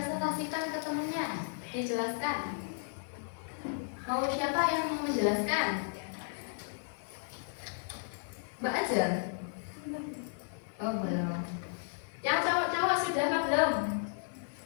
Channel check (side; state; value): right; silent; digital silence